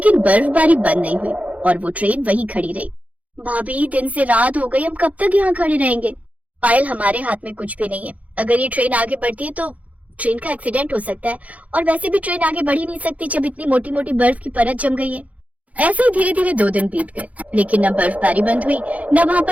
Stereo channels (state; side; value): late; left; 0.069 ms